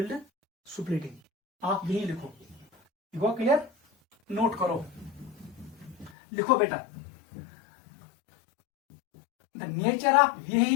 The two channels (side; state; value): right; drops out; at 6.1 s